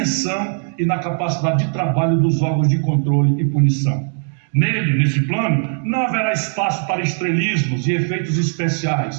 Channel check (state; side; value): silent; left; 60 dB below the other